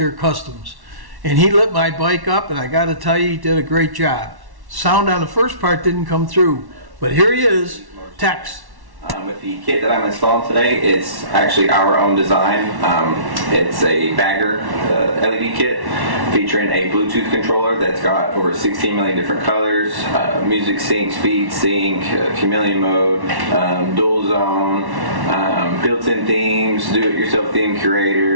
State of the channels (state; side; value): late; left; 1.1 ms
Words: Customs, and he lit my bike up, and I got to tell you, he did a great job. Sound on the first part didn't come through, but here he is, Tex. With the kit that I'm installing today, it's actually our own design. It's a bagger LED kit featuring a Bluetooth controller that's got over 16 million different colors, music sync, speed sync, chameleon mode, dual zone, built-in themes, do-it-yourself theme